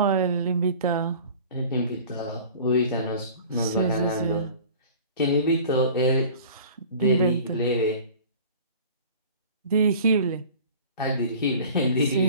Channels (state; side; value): inverted; both; correlation -0.43